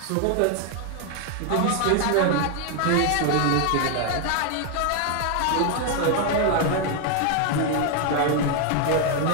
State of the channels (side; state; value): both; different; correlation 0.00